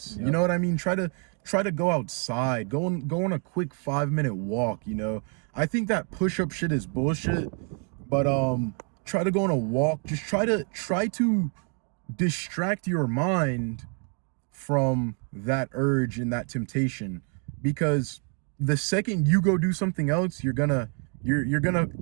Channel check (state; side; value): quieter; left; 38.8 dB